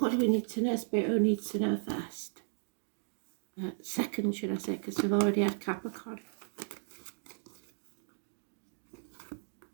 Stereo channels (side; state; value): left; silent; digital silence